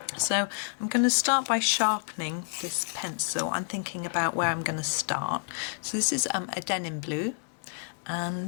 So I'm going to start by sharpening this pencil. I'm thinking about where I'm going to start. So this is a Denim Blue,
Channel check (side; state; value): right; silent; 58 dB below the other